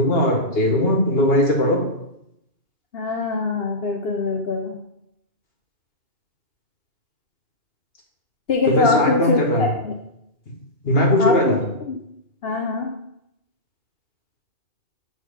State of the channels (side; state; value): right; late; 2.8 ms